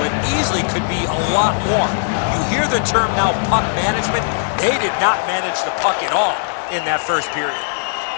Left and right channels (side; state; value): right; silent; digital silence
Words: easily could be a lot more. You hear the term now, puck management. They did not manage the puck at all in that first period.